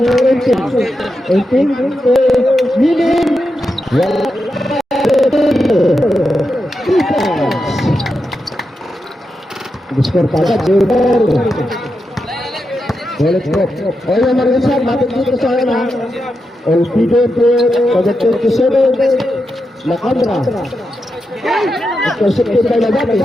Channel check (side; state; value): both; normal; correlation 0.87